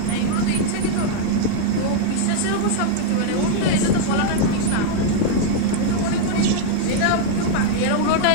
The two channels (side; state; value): both; different; correlation -0.01